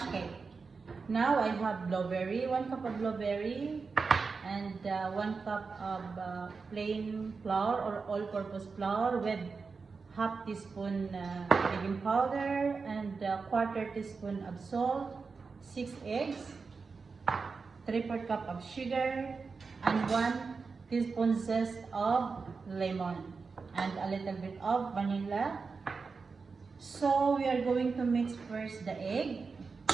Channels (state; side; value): quieter; left; 4.7 dB